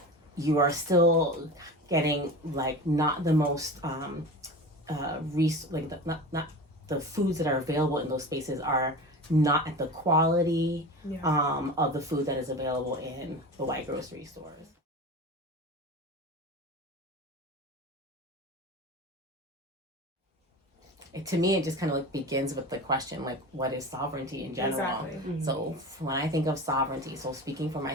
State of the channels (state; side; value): normal; both; correlation 0.31